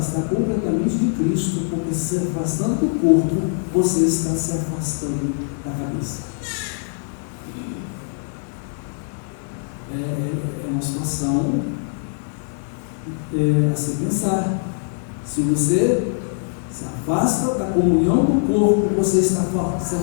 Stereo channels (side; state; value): right; silent; digital silence